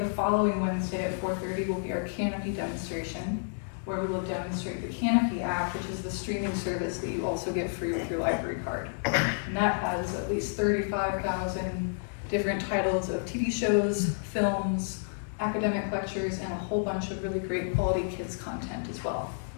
following Wednesday at 4:30 will be our Canopy demonstration, where we will demonstrate the Canopy app, which is the streaming service that you also get free with your library card. And that has at least 35,000 different titles of TV shows, films, academic lectures, and a whole bunch of really great quality kids content as well.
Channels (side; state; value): right; silent; digital silence